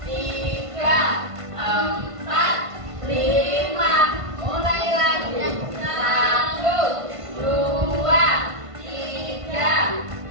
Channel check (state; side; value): late; left; 1.5 ms